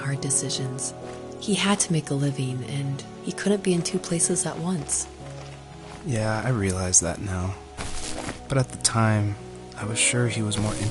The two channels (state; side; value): identical; both; correlation 1.00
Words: decisions. He had to make a living, and he couldn't be in two places at once. Yeah, I realize that now. But at the time, I was sure he was more